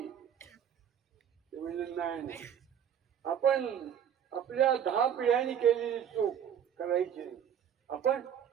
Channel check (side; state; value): left; quieter; 8.9 dB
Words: ते म्हणजे नाही, आपण आपल्या 10 पिढ्यांनी केलेली चूक करायची नाही. आपण